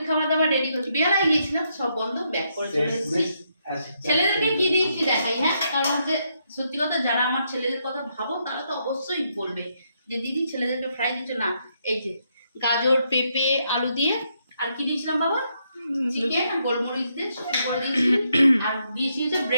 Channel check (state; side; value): inverted; both; correlation -0.77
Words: খাবার দাবার রেডি করছি, বেলায় গিয়েছিলাম সব বন্ধ, ব্যাক করে চলে এসেছি। ছেলেদেরকে কি দিয়েছি দেখাই, হ্যাঁ, কারণ হচ্ছে সত্যি কথা যারা আমার ছেলেদের কথা ভাবো তারা তো অবশ্যই বলবে যে দিদি ছেলেদেরকে ফ্রাই দিচ্ছ না। এই যে গাজর পেঁপে আলু দিয়ে, আর কি দিয়েছিলাম বাবা, চিকেন আর গোলমরিচ দিয়ে শুকনো করে দিয়েছি, আর দিয়েছি হচ্ছে